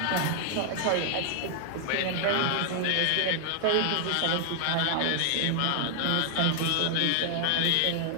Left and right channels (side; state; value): both; different; correlation 0.00